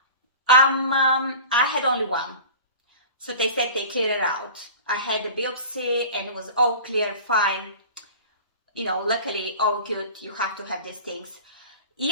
I had only one, so they said they cleared it out. I had the biopsy and it was all clear, fine. Luckily, all good. You have to have these things.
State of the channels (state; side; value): inverted; both; correlation -0.38